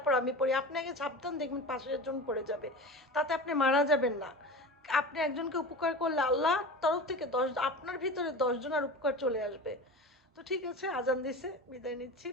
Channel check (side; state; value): both; normal; correlation 0.31